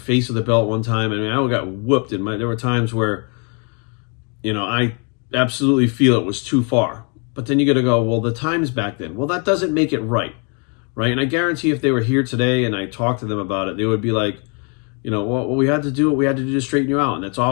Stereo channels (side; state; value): right; quieter; 37.1 dB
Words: with a belt one time. I mean, I got whooped. There were times where, you know, I absolutely feel it was too far. But then you got to go, well, the times back then. Well, that doesn't make it right. Right? And I guarantee if they were here today and I talked to them about it, they would be like, you know, well, we had to do what we had to do to straighten you out. And that's